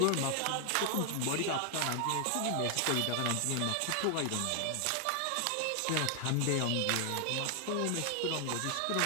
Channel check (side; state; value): both; different; correlation 0.00